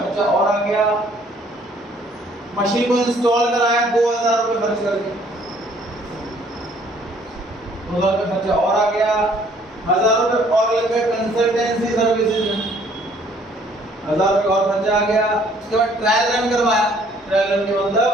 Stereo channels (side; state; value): both; normal; correlation 0.60